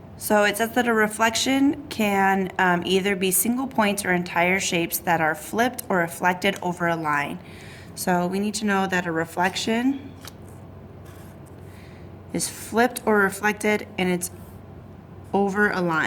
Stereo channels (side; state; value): both; identical; correlation 1.00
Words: So it says that a reflection can either be single points or entire shapes that are flipped or reflected over a line. So we need to know that a reflection is flipped or reflected and it's over a